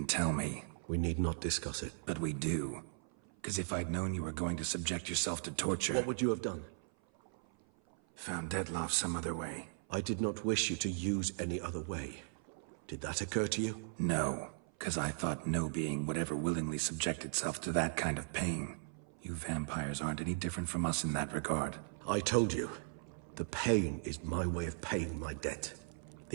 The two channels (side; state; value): left; silent; 53 dB below the other